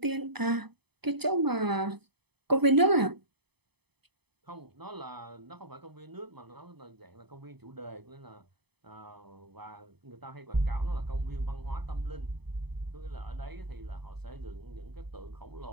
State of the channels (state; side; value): late; left; 0.98 ms